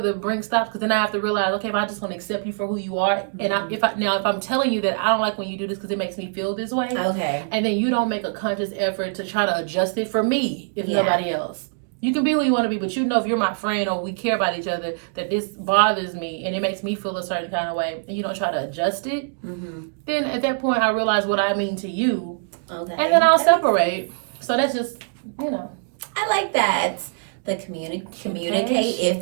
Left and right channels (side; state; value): left; silent; digital silence